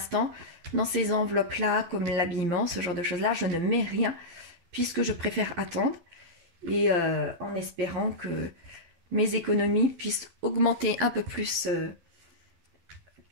dans ces enveloppes-là, comme l'habillement, ce genre de choses-là, je ne mets rien puisque je préfère attendre et en espérant que mes économies puissent augmenter un peu plus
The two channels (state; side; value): late; left; 12 ms